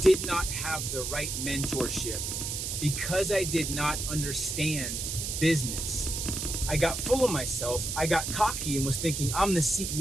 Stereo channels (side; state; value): right; noise; hiss, 3 dB below the sound